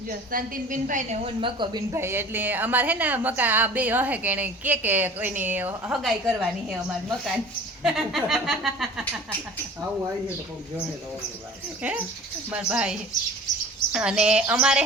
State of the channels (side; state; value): both; normal; correlation 0.44